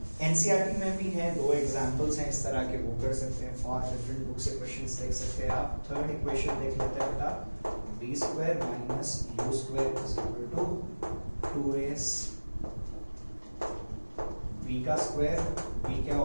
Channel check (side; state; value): both; inverted; correlation -1.00